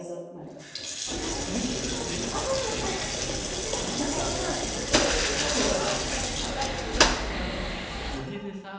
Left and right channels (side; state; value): both; identical; correlation 1.00